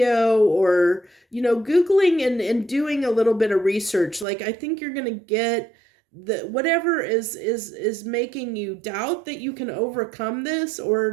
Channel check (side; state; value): left; drops out; at 4.2 s